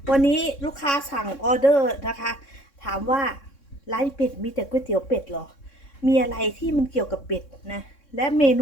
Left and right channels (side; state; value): right; late; 3.6 ms